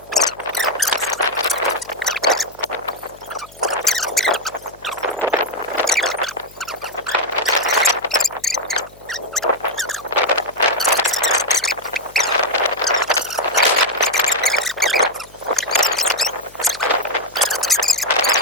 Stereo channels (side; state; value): left; noise; hum, 26 dB below the sound